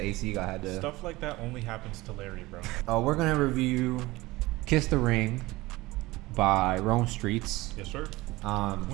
AC guy had to. Stuff like that only happens to Larry, bro. We're gonna review "Kiss the Ring" by Rome Streetz. Yes, sir.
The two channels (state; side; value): quieter; left; 20.1 dB